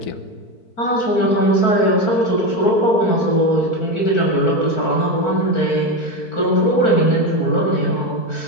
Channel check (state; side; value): late; right; 4.6 ms